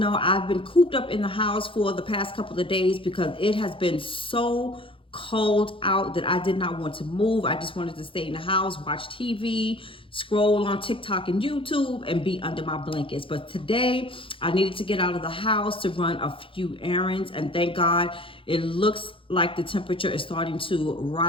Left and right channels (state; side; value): late; right; 0.25 ms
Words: I've been cooped up in the house for the past couple of days because it has been so cold out that I did not want to move. I just wanted to stay in the house, watch TV, scroll on TikTok and YouTube, and be under my blankets. But today, I needed to get out of the house to run a few errands, and thank God it looks like the temperature is starting to